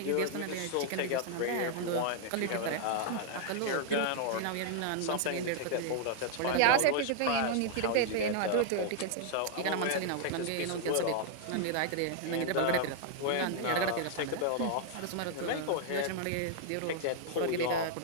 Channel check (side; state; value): both; different; correlation -0.01